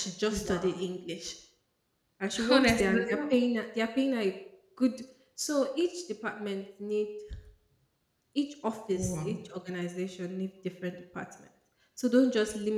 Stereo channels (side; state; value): both; identical; correlation 1.00